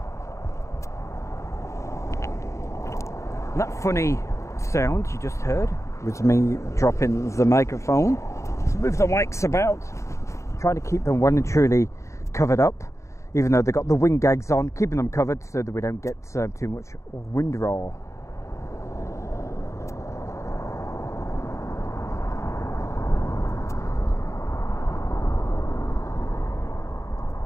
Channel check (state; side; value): late; right; 0.14 ms